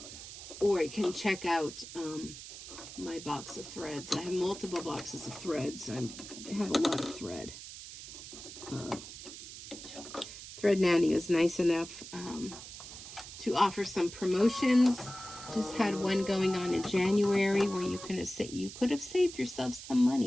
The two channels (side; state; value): right; noise; hiss, 12 dB below the sound